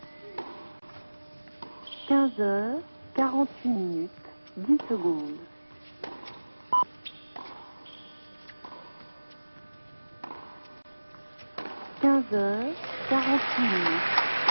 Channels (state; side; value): inverted; both; correlation -1.00